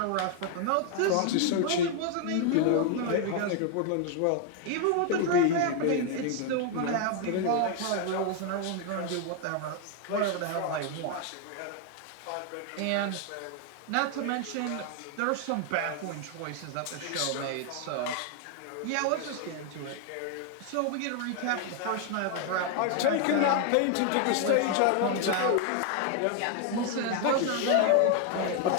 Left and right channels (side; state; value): both; different; correlation 0.00